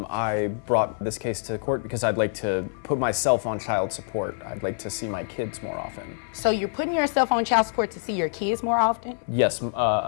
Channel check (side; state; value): right; silent; digital silence